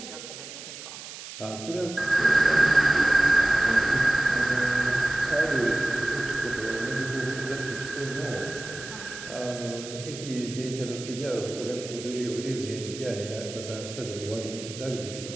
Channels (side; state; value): right; noise; hiss, 12 dB below the sound